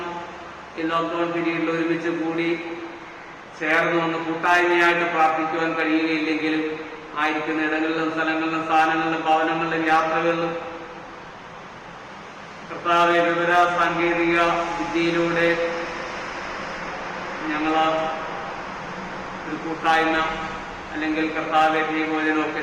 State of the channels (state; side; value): identical; both; correlation 1.00